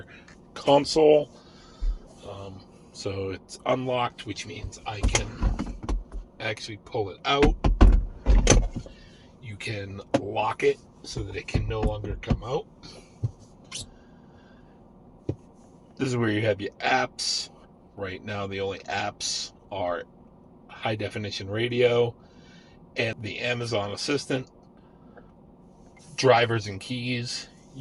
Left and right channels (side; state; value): both; identical; correlation 1.00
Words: console. So it's unlocked, which means I can actually pull it out. You can lock it so that it can no longer come out. This is where you have your apps. Right now, the only apps are high definition radio and the Amazon Assistant. Drivers and keys.